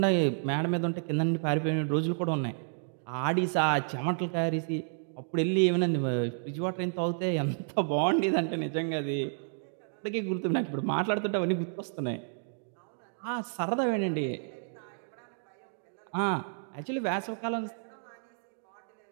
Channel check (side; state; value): left; silent; digital silence